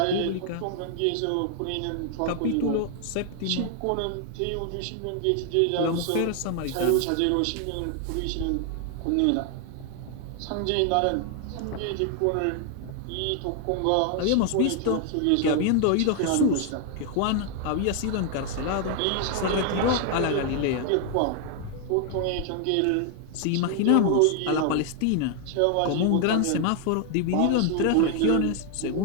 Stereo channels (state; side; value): different; both; correlation 0.00